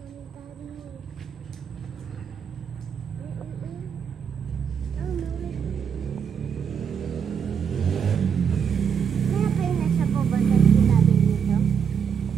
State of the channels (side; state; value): left; quieter; 7.2 dB